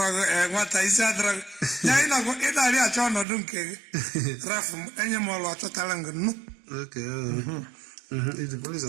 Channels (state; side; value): drops out; left; at 3.2 s